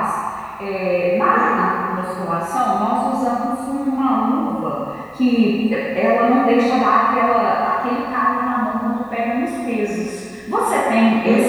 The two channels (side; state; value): both; identical; correlation 1.00